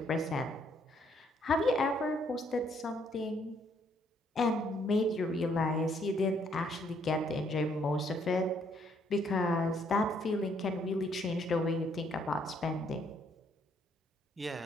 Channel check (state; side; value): normal; both; correlation 0.68